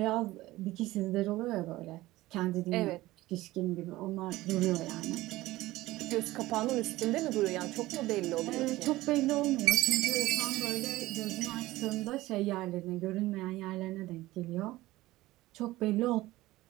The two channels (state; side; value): quieter; left; 17.8 dB